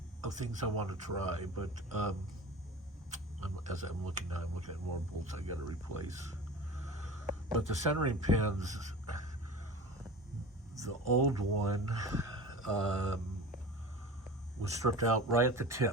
things I want to try, but as I'm looking now, I'm looking at more bolts I got to replace. But the centering pins, the old one was stripped out right at the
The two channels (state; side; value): normal; both; correlation 0.35